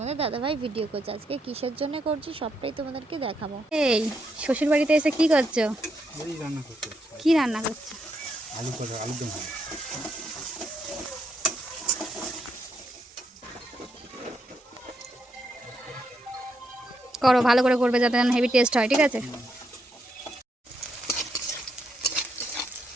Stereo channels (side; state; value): both; normal; correlation 0.79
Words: দাদাভাই ভিডিও করছে, আজকে কিসের জন্য করছি সবটাই তোমাদেরকে দেখাবো। এই শ্বশুর বাড়িতে এসে কি করছো? কি রান্না করছো? আলুদম। করো, ভালো করে করবে যাতে হেভি টেস্ট হয়, ঠিক আছে?